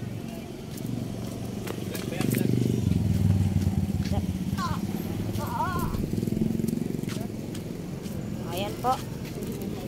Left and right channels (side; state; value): both; identical; correlation 1.00